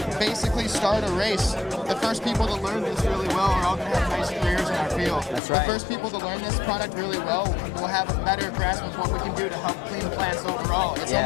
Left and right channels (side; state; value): right; drops out; at 5.4 s